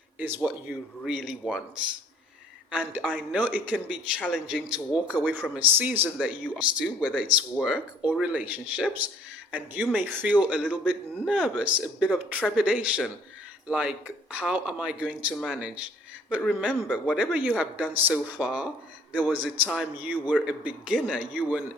is what you really want. And I know it can be challenging to walk away from a season that you are used to, whether it's work or relationships, and you may feel a little bit nervous, a bit of trepidation, like, how am I going to manage? But remember, whatever you have done so far, there was a time you were a beginner, you were an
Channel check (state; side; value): normal; both; correlation 0.57